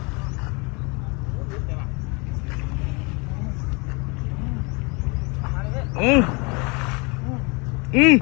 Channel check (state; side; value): quieter; right; 29.7 dB